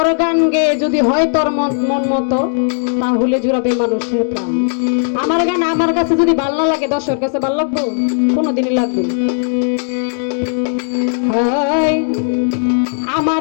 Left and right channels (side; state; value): right; silent; digital silence